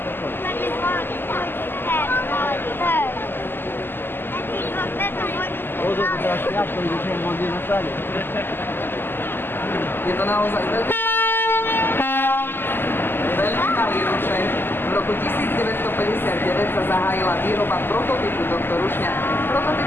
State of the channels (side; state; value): right; late; 0.10 ms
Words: Je to naozaj veľmi malý rušeň. V roku 1959 sa zahájila výroba prototypu tohto rušňa.